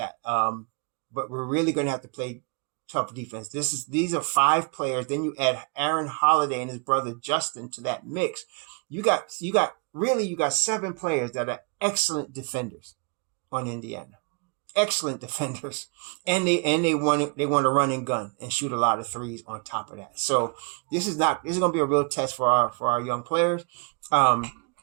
But we're really going to have to play tough defense. These are 5 players. Then you add Aaron Holiday and his brother Justin to that mix. You got 7 players that are excellent defenders on Indiana. Excellent defenders, and they want to run and gun and shoot a lot of threes on top of that. So this is going to be a real test for our young players. And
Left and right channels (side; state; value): left; quieter; 35.4 dB